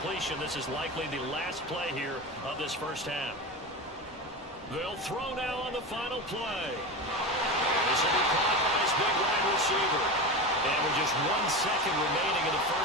this is likely the last play here of this first half. They'll throw now on the final play. This will be caught by his big wide receiver. And with just 1 second remaining in the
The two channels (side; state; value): both; normal; correlation 0.24